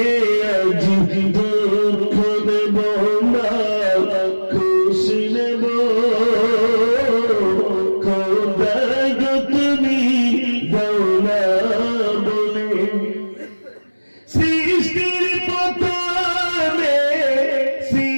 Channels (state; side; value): inverted; both; correlation -1.00